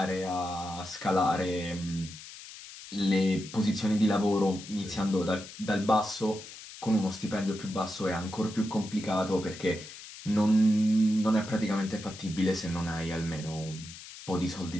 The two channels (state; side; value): noise; left; hiss, 15 dB below the sound